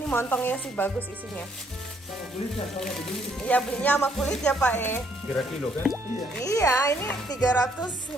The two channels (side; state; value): both; normal; correlation 0.68